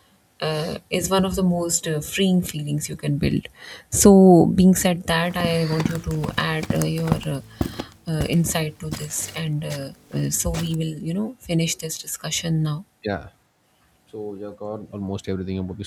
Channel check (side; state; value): both; identical; correlation 1.00